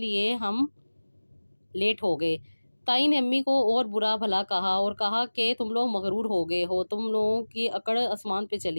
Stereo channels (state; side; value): inverted; both; correlation -1.00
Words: ہم لیٹ ہو گئے۔ تائی نے امی کو اور برا بھلا کہا اور کہا کہ تم لوگ مغرور ہو گئے ہو، تم لوگوں کی اکڑ آسمان پہ